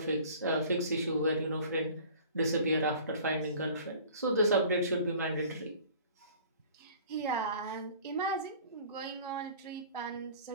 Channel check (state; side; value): inverted; both; correlation -0.47